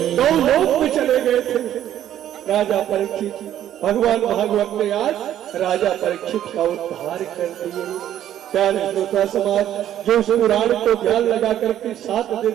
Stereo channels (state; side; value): quieter; left; 11.4 dB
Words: गौलोक में चले गए थे राजा परीक्षित। भगवान भागवत ने आज राजा परीक्षित का उद्धार कर दिए। प्यारे श्रोता समाज, जो इस पुराण को ध्यान लगा करके 7